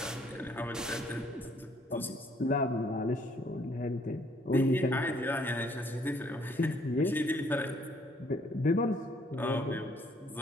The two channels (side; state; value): both; normal; correlation 0.64